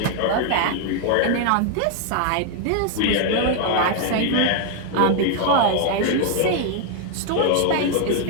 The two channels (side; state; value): both; different; correlation 0.00